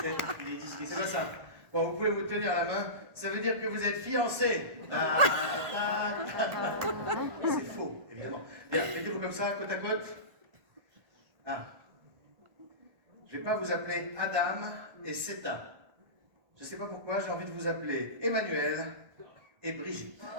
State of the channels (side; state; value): left; late; 1.4 ms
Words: C'est pas ça. Bon, vous pouvez vous tenir la main, ça veut dire que vous êtes fiancés. C'est faux, évidemment. Bien, mettez-vous comme ça, côte à côte. Ah. Je ne vais pas vous appeler Adam et Seta. Je ne sais pas pourquoi, j'ai envie de vous appeler Emmanuel et Brigitte.